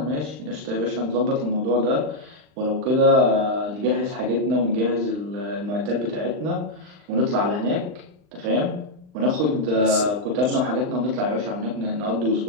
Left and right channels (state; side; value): late; left; 39 ms